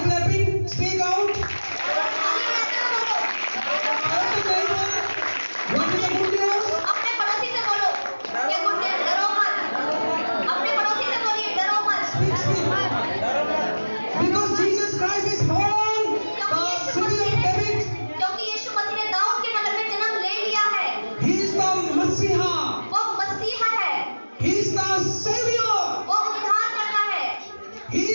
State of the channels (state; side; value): inverted; both; correlation -1.00